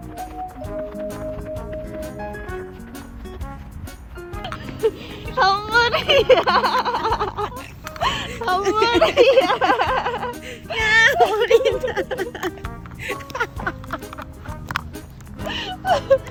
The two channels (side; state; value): both; identical; correlation 1.00